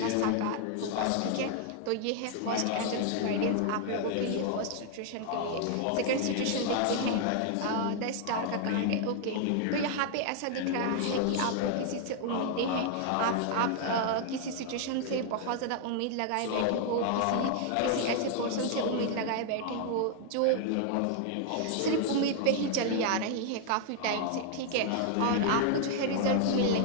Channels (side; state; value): both; different; correlation 0.00